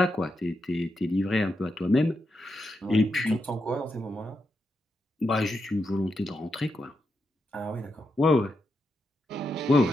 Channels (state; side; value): normal; both; correlation 0.85